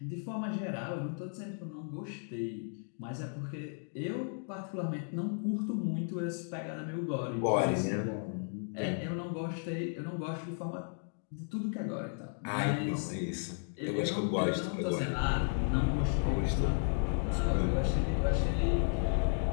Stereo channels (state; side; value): silent; right; 55 dB below the other